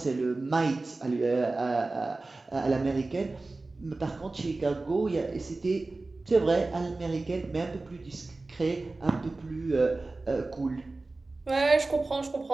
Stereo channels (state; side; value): quieter; left; 3.3 dB